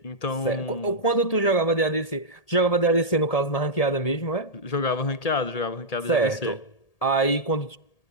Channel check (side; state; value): right; late; 1.8 ms